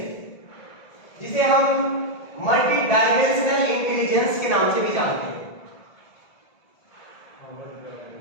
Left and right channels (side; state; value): right; late; 1.7 ms